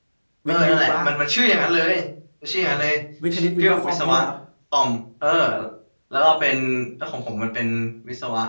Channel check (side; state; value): both; inverted; correlation -1.00